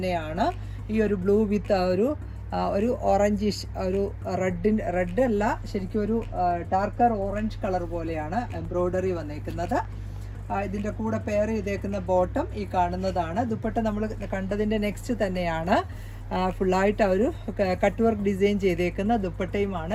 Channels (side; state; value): both; identical; correlation 1.00